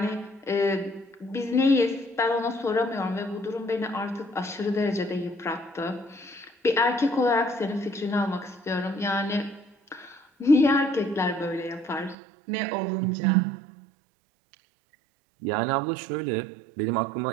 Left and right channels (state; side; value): drops out; left; at 12.2 s